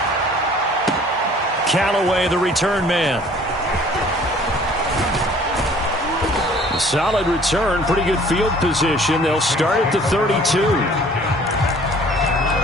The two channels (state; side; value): normal; both; correlation 0.53